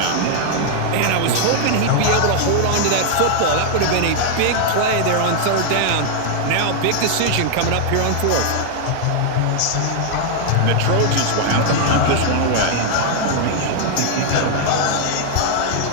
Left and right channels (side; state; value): both; different; correlation 0.00